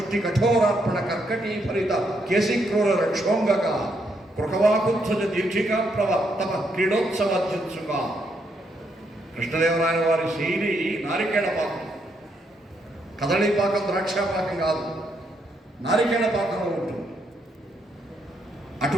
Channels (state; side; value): normal; both; correlation 0.76